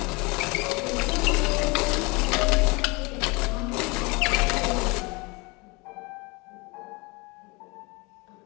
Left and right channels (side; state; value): right; quieter; 26.9 dB